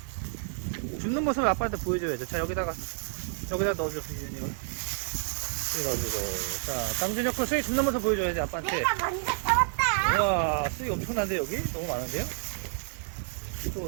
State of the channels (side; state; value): left; silent; 58 dB below the other